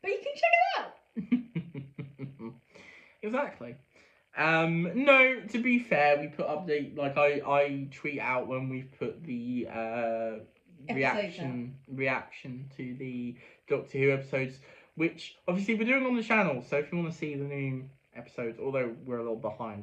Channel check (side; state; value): both; identical; correlation 1.00